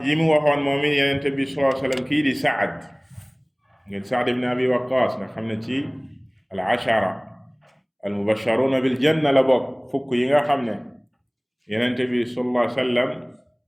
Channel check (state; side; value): identical; both; correlation 1.00